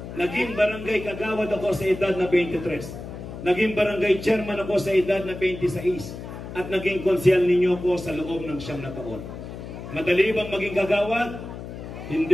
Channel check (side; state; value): left; noise; hum, 10 dB below the sound